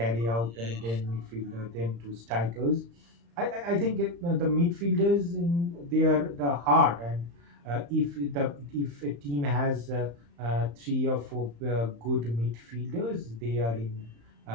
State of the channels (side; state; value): left; late; 35 ms